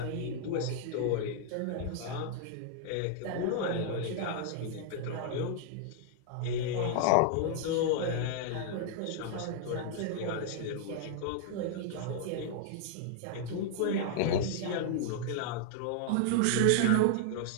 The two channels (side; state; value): both; different; correlation -0.01